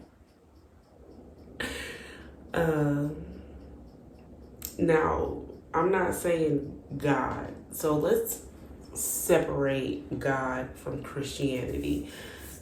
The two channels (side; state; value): both; identical; correlation 1.00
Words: now, I'm not saying God. So let's separate God from Christianity.